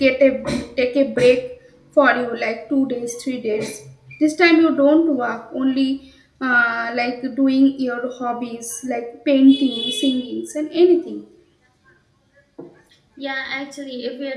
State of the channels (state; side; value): identical; both; correlation 1.00